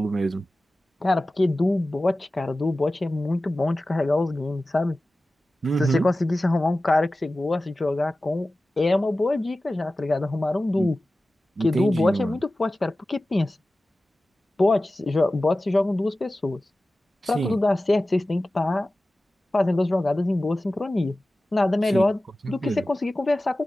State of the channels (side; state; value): both; normal; correlation 0.96